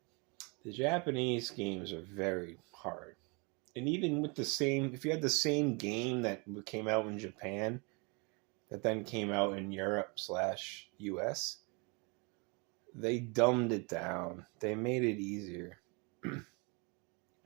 The Japanese games are very hard. And even with the same, if you had the same game that came out in Japan, that then came out in Europe/US, they dumbed it down. They made it easier,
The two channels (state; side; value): quieter; left; 31.1 dB